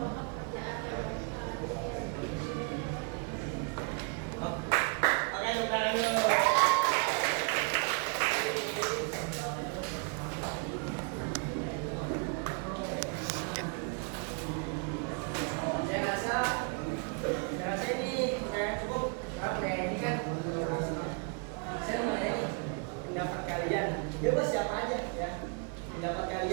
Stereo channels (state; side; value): quieter; left; 37.1 dB